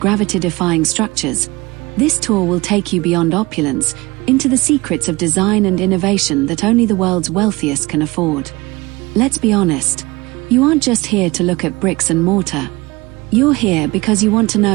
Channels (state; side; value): quieter; left; 22.3 dB